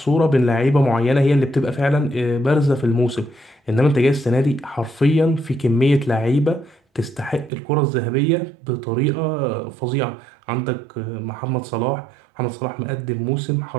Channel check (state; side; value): drops out; left; at 7.5 s